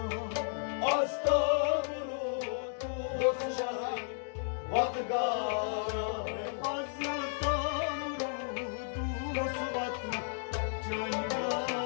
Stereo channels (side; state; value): right; silent; digital silence